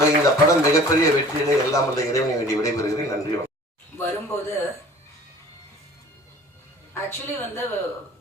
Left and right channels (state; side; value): normal; both; correlation 0.47